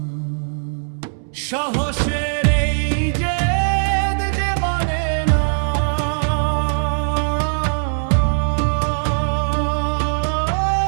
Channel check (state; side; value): silent; left; 66 dB below the other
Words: সাহসের এই জেদ যে মানে না।